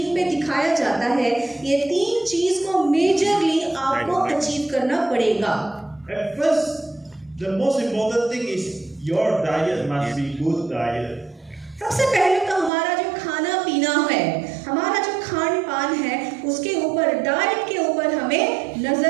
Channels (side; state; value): left; drops out; at 12.7 s